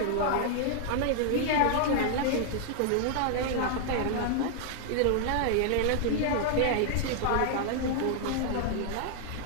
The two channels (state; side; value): different; both; correlation 0.00